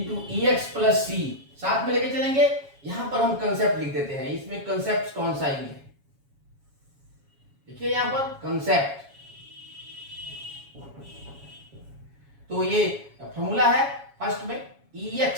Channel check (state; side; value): late; left; 7.2 ms